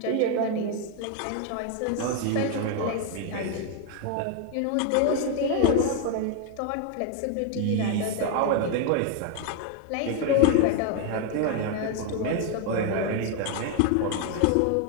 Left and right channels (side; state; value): both; different; correlation 0.01